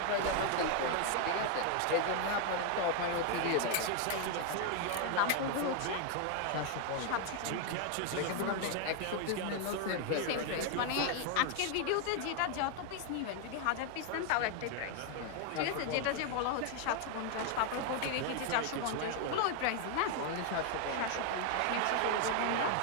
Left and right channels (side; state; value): both; different; correlation 0.00